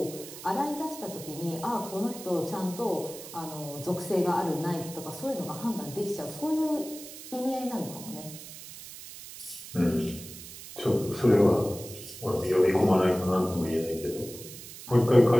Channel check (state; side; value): noise; right; hiss, 14 dB below the sound